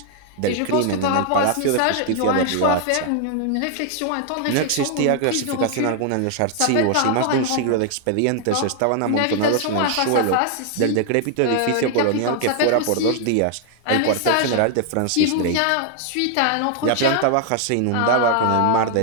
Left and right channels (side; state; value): both; different; correlation 0.00